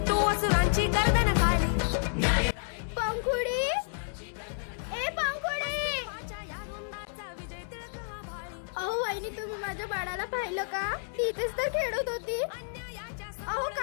तू असुरांची गर्दन काढी पंखुडी ए पंखुडी अहो वहिनी तुम्ही माझ्या बाळाला पाहिलं का ती इथेच तर खेळत होती अहो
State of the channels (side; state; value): right; silent; digital silence